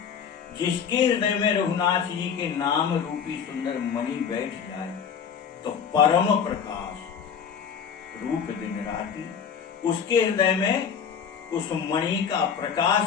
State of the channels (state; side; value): quieter; right; 7.2 dB